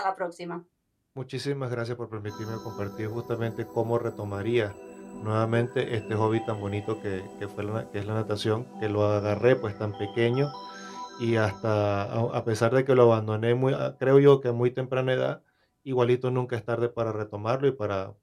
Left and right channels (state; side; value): identical; both; correlation 1.00